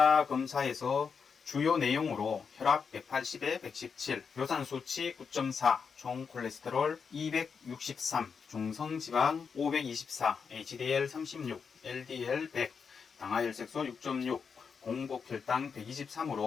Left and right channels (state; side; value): quieter; right; 6.0 dB